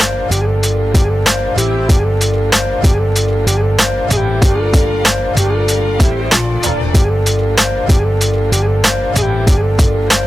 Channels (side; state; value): both; normal; correlation 0.94